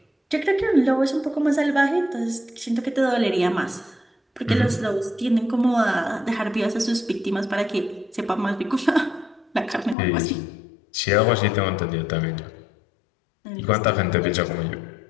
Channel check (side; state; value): right; drops out; at 10.0 s